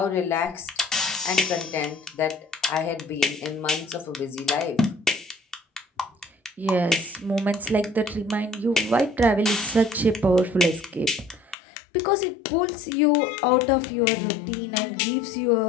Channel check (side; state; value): right; drops out; at 11.6 s